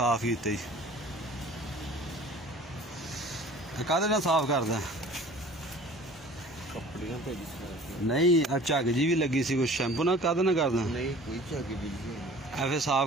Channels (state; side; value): normal; both; correlation 0.46